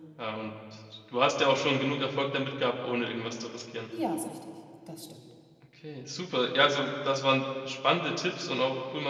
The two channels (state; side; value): identical; both; correlation 1.00